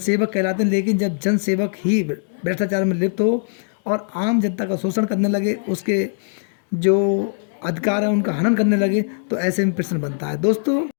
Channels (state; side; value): silent; right; 65 dB below the other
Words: कहलाते हैं। लेकिन जब जनसेवक ही भ्रष्टाचार में लिप्त हो और आम जनता का शोषण करने लगे, उसके जो अधिकार है उनका हनन करने लगे, तो ऐसे में प्रश्न बनता है। दोस्तों,